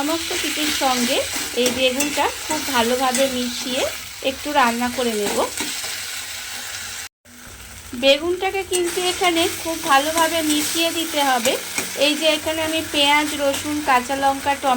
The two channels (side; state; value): both; identical; correlation 1.00